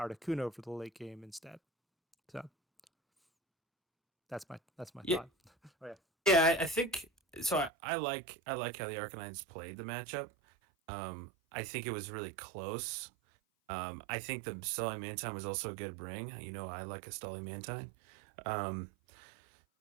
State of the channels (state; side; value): drops out; left; at 7.7 s